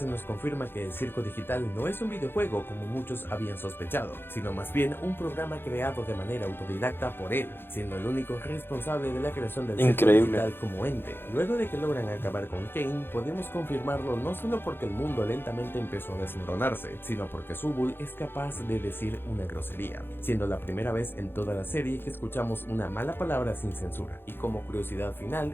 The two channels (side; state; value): right; late; 0.10 ms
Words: nos confirma que el circo digital no es un videojuego como muchos habían sospechado, sino más bien un programa creado de manera autodidacta por él, siendo el único responsable de la creación del circo digital como ente. Luego de que logran acabar con Kane, podemos confirmarlo no solo porque el mundo lentamente empezó a desmoronarse, sino porque Subul es capaz de decir una grosería, siendo la primera vez en toda la serie que escuchamos una mala palabra sin censura. Y como curiosidad final,